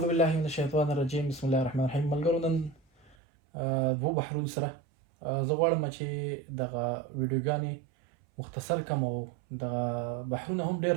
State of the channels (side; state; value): left; drops out; at 3.2 s